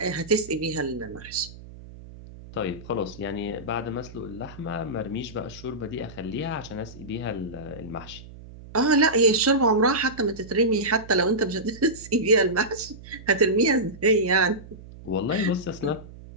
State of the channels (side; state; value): right; noise; hum, 17 dB below the sound